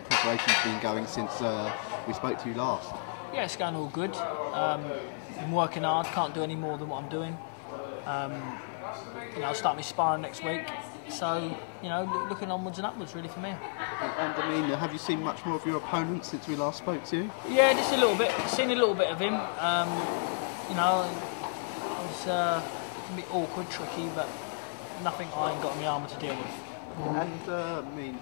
preparations been going since we spoke to you last? Yeah, it's going all good. Been working hard, can't do any more than what I'm doing. I'll start my sparring next week. So, looking onwards and upwards really for me. And I mean, have you seen much more of your opponent since we last spoke to you? Yeah, just a little bit. Seen a little bit of him. It's can be awkward, tricky, but nothing I ain't got in my armour to deal with. And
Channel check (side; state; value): right; silent; digital silence